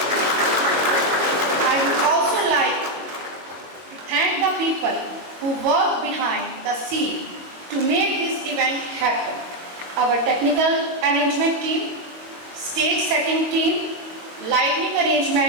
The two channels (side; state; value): left; late; 22 ms